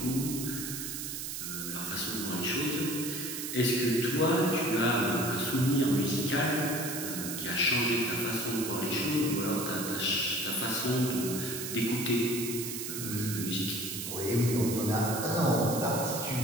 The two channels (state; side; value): noise; right; hiss, 5 dB below the sound